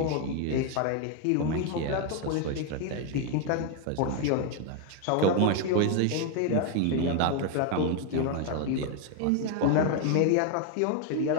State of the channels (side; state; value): both; different; correlation 0.01